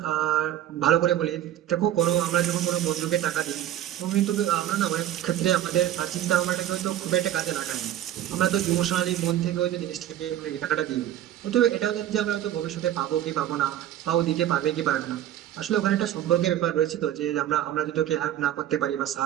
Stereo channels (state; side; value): quieter; left; 12.1 dB